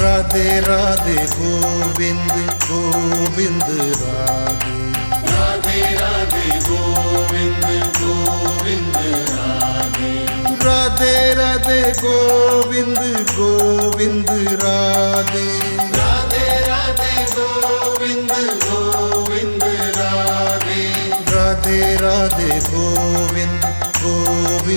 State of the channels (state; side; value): inverted; both; correlation -1.00